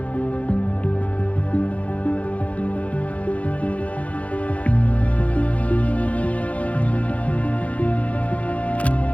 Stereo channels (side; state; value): right; late; 0.066 ms